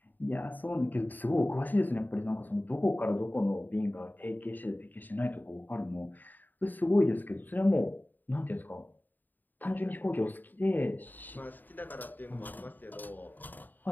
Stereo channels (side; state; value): right; late; 0.088 ms